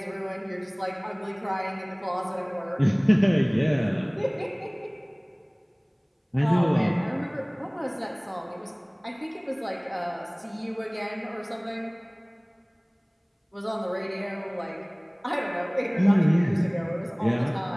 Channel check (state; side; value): identical; both; correlation 1.00